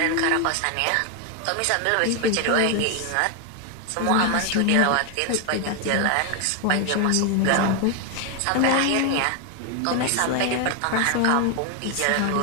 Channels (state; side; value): different; both; correlation 0.01